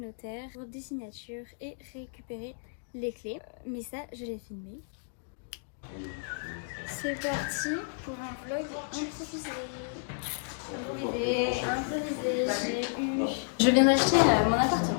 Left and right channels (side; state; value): right; silent; digital silence